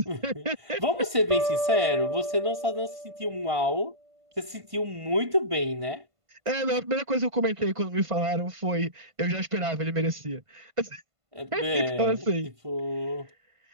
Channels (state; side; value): late; left; 1.5 ms